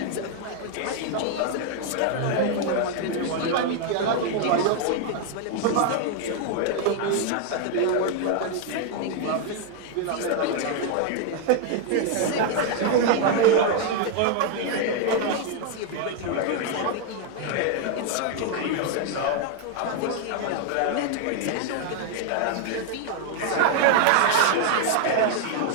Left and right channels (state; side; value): different; both; correlation 0.00